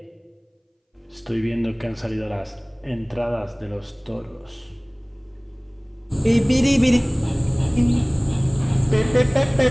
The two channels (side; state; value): both; identical; correlation 1.00